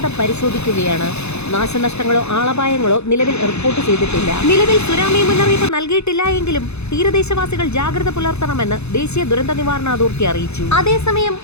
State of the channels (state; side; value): late; right; 0.80 ms